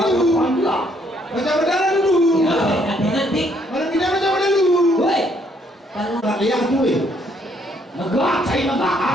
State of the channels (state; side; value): normal; both; correlation 0.68